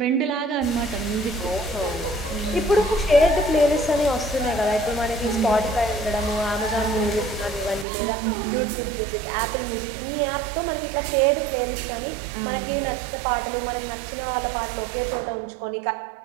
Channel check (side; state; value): left; drops out; at 7.9 s